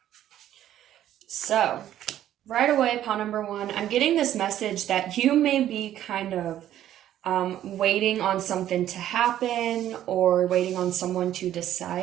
So, right away, pile number 1, I'm getting this message that you may be kind of waiting on something to happen or waiting on someone to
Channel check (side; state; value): left; quieter; 11.9 dB